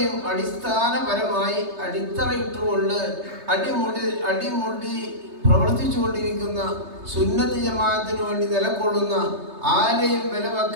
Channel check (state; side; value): late; left; 3.3 ms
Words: അടിസ്ഥാനപരമായി അടിത്തറയിട്ടുകൊണ്ട് അടിമുടി പ്രവർത്തിച്ചുകൊണ്ടിരിക്കുന്ന സുന്നത്ത് ജമാഅത്തിന് വേണ്ടി നിലകൊള്ളുന്ന, ആരെയും വില